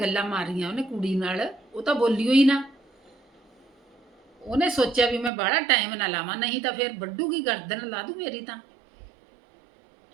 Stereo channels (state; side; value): drops out; left; at 5.3 s